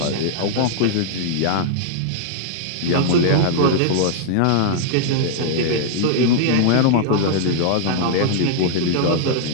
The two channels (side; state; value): both; different; correlation -0.01